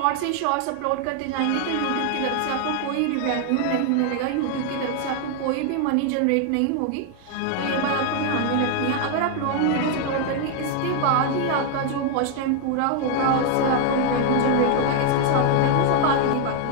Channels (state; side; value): different; both; correlation 0.00